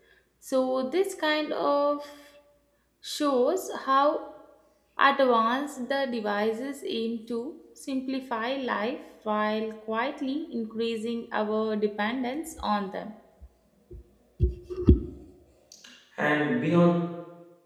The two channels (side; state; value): both; identical; correlation 1.00